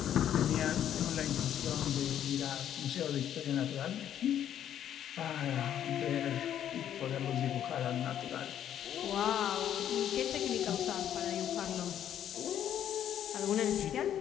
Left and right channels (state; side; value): quieter; right; 10.3 dB